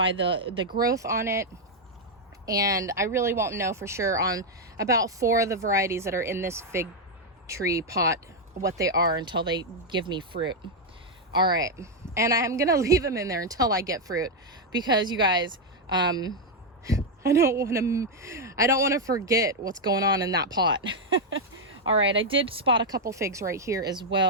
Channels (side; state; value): both; normal; correlation 0.01